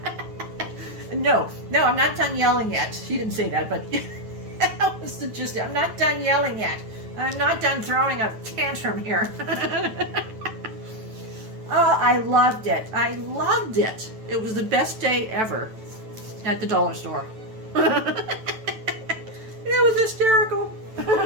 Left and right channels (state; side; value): late; left; 9.1 ms